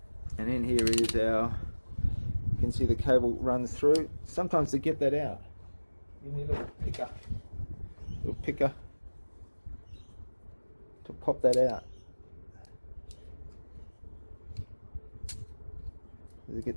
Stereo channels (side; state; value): both; inverted; correlation -1.00